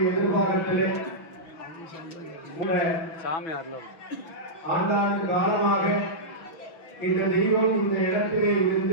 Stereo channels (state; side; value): late; right; 6.2 ms